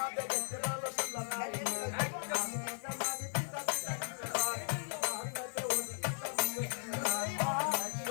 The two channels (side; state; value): right; silent; digital silence